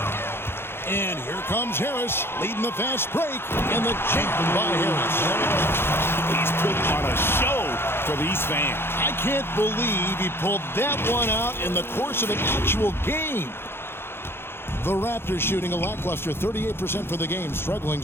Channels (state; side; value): late; right; 0.11 ms